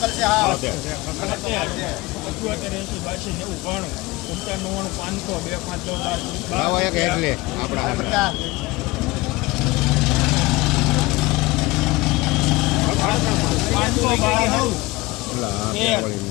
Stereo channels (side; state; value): right; quieter; 21.4 dB